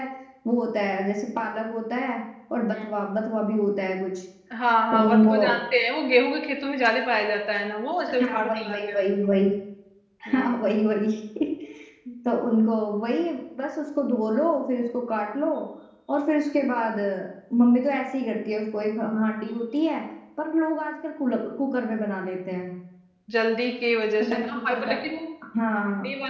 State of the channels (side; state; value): both; identical; correlation 1.00